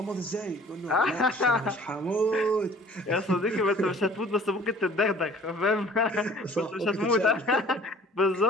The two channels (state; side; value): normal; both; correlation 0.51